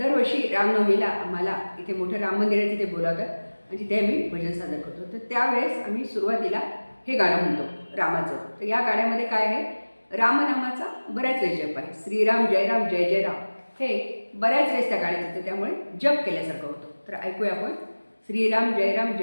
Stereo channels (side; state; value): both; inverted; correlation -1.00